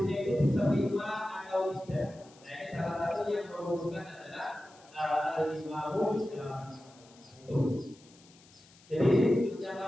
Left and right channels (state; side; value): noise; left; hiss, 26 dB below the sound